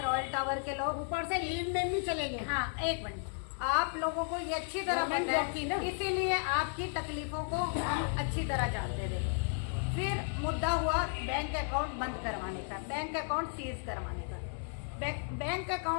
रॉयल टावर के लोग। ऊपर से लीव में भी चले गए। हाँ, एक मिनट, आप लोगों को ये अच्छी तरह पता है, इसीलिए आपकी तकलीफों को हम अच्छी तरह जानते थे। फिर मुद्दा हुआ बैंक अकाउंट बंद करवाने का, बैंक अकाउंट सीज करवाने का। बैंक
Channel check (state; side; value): silent; right; 55 dB below the other